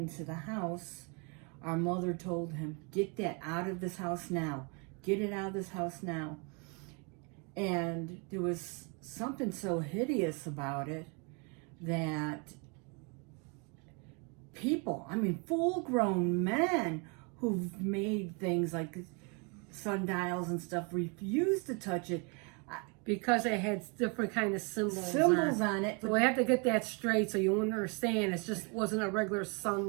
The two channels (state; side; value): quieter; left; 33.6 dB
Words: the house, our mother told him, "Get that out of this house now. Get it out of this house now." And there was something so hideous about it that people, full-grown men who've made things like sundials and stuff, refused to touch it. Because it had different kind of symbols on it. So we have to get that straight so you understand. It just wasn't a regular